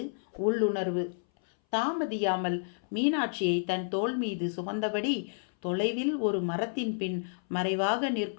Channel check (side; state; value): right; silent; 58 dB below the other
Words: உள்ளுணர்வு. தாமதியாமல் மீனாட்சியை தன் தோள் மீது சுமந்தபடி தொலைவில் ஒரு மரத்தின் பின் மறைவாக